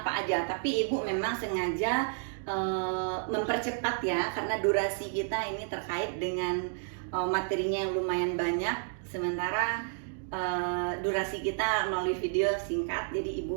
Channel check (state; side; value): silent; left; digital silence